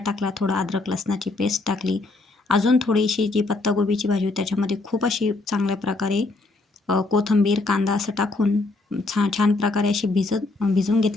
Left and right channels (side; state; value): right; quieter; 3.3 dB